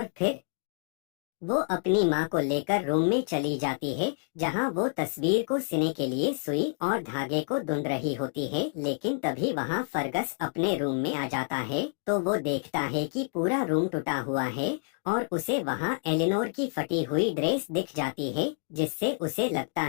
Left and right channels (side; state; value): right; silent; 57 dB below the other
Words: फिर वो अपनी माँ को लेकर रूम में चली जाती है, जहाँ वो तस्वीर को सिने के लिए सुई और धागे को ढूंढ रही होती है। लेकिन तभी वहाँ फर्गस अपने रूम में आ जाता है। तो वो देखता है कि पूरा रूम टूटा हुआ है और उसे वहाँ एलिनोर की फटी हुई ड्रेस दिख जाती है, जिससे उसे लगता